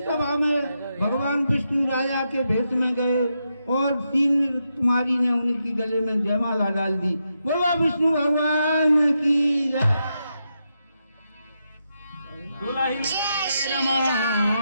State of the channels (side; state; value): both; inverted; correlation -0.85